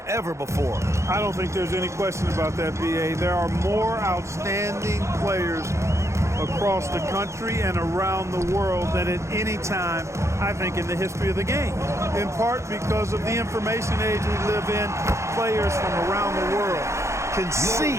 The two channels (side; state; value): left; late; 0.14 ms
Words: ever before. I don't think there's any question about that, B.A. There are more outstanding players across the country and around the world than at any time, I think, in the history of the game. In part because of the information age we live in, players from around the world can